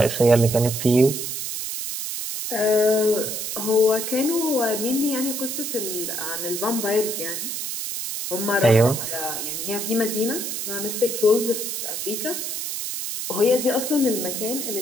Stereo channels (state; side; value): noise; right; hiss, 4 dB below the sound